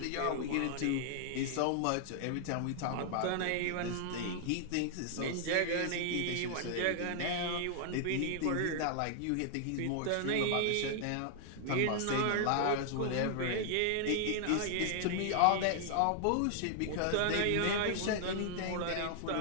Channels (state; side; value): different; both; correlation 0.00